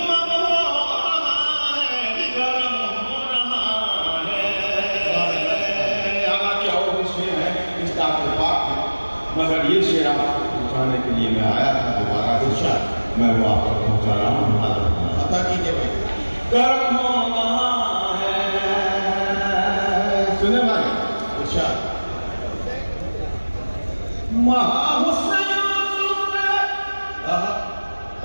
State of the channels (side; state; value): both; inverted; correlation -1.00